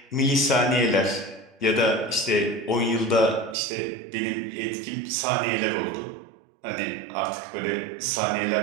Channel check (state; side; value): drops out; left; at 3.6 s